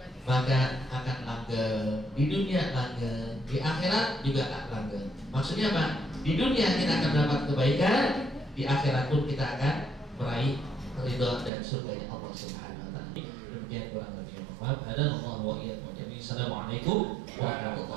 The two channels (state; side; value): drops out; left; at 11.5 s